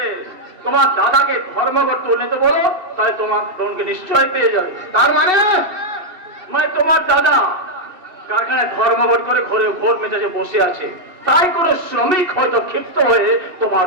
তোমার দাদাকে ধর্মঘট তুলে তো বলো, তাহলে তোমার বোনকে নিশ্চয় পেয়ে যাবে। তার মানে তোমার দাদা কারখানায় ধর্মঘট করে ঘরে ঘোর মেজাজে বসে আছে, তাই কোনো শ্রমিক হয়তো ক্ষিপ্ত হয়ে তোমার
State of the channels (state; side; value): late; left; 2.7 ms